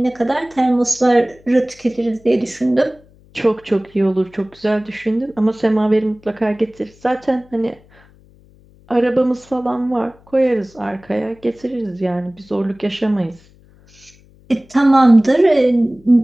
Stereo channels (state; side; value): noise; left; hum, 28 dB below the sound